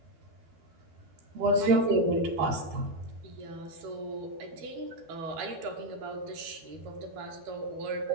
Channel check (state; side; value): late; left; 12 ms